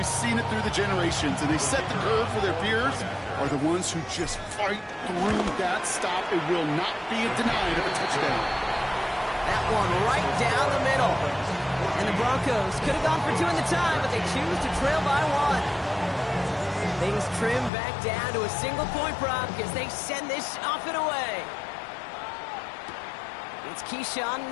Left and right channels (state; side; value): drops out; right; at 17.7 s